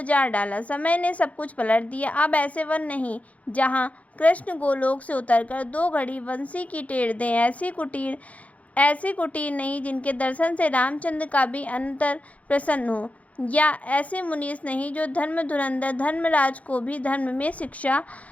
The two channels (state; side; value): late; right; 0.068 ms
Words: डाला। समय ने सब कुछ पलट दिया। अब ऐसे वन नहीं जहाँ कृष्ण गोलोक से उतरकर 2 घड़ी बंसी की टेर दें। ऐसी कुटीर नहीं जिनके दर्शन से रामचंद्र का भी अंतर प्रसन्न हो, या ऐसे मुनीस नहीं जो धर्म धुरंधर धर्मराज को भी धर्म में शिक्षा